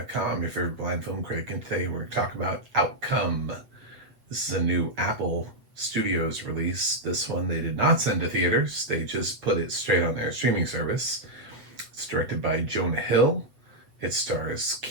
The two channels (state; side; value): late; left; 7.8 ms